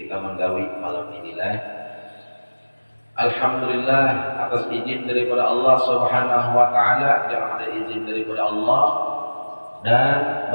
kita menggawi malam inilah. Alhamdulillah, atas izin daripada Allah Subhanahu wa taala, yang ada izin daripada Allah dan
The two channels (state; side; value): inverted; both; correlation -1.00